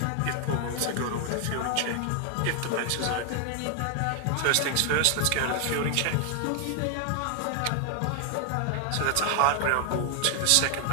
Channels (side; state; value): both; different; correlation 0.00